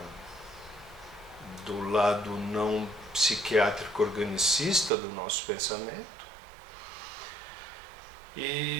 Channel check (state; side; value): drops out; left; at 4.9 s